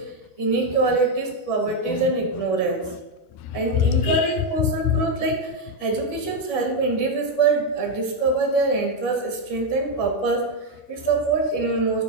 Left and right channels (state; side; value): late; right; 12 ms